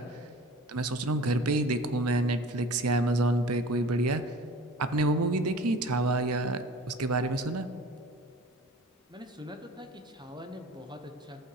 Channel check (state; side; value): normal; both; correlation 0.42